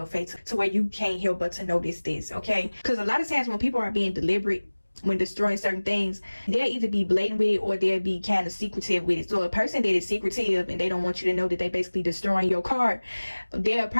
face, to where you can't help but to notice this, okay? Because a lot of times when people are being deliberate when destroying certain things, they'll either be blatant with it or they'll be kind of secretive with it. So a person that is secretive and they don't want you to know that they basically destroying your car, they'll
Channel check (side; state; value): both; inverted; correlation -1.00